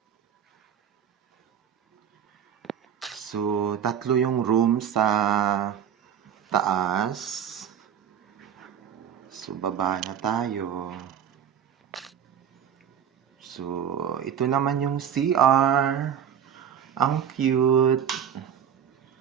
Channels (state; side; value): quieter; left; 8.6 dB